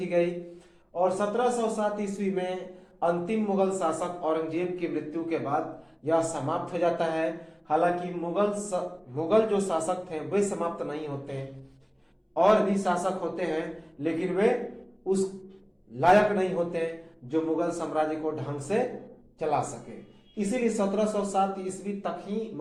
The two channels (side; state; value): both; identical; correlation 1.00